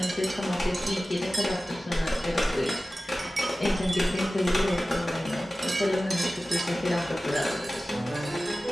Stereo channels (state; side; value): normal; both; correlation 0.96